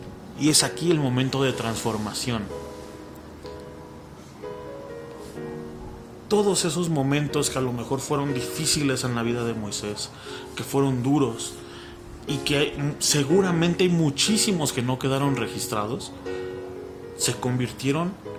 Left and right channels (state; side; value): identical; both; correlation 1.00